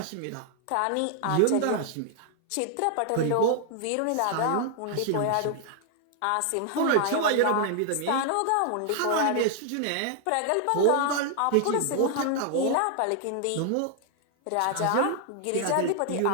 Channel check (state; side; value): different; both; correlation 0.00